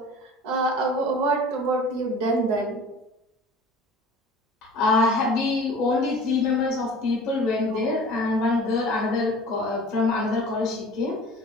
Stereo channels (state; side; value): normal; both; correlation 0.43